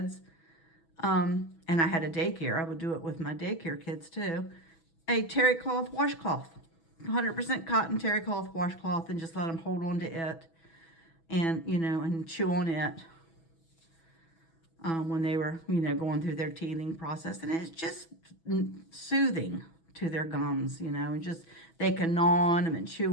and I had a daycare, I would do it with my daycare kids too, a terry cloth washcloth, 100% cotton terry cloth washcloth, and just let them hold on to it and, you know, and chew on it. When they were, you know, going through their teething process. And it's just soothing to their gums, you know, and just, they can gnaw on them and chew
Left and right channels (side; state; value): right; late; 6.1 ms